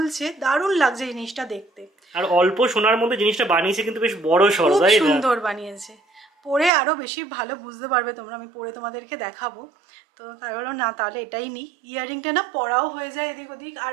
দারুণ লাগছে জিনিসটা দেখতে। আর অল্প সোনার মধ্যে জিনিসটা বানিয়েছে কিন্তু বেশ বড় সড়, তাই না? সুন্দর বানিয়েছে, পরে আরো বেশি ভালো বুঝতে পারবে তোমরা, আমি পরে তোমাদেরকে দেখাবো। তো তাই হলো না তাহলে এটাই নি, ইয়াররিংটা না পরাও হয়ে যায় এদিক ওদিক, আর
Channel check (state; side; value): drops out; left; at 6.7 s